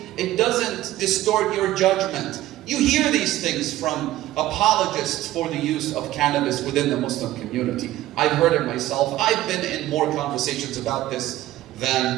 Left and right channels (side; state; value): left; quieter; 14.9 dB